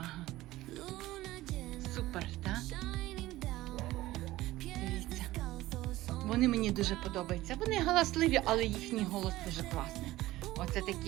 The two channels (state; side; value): quieter; left; 16.9 dB